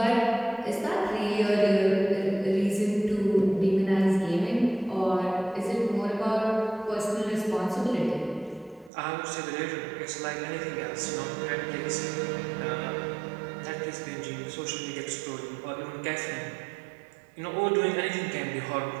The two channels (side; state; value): left; drops out; at 8.9 s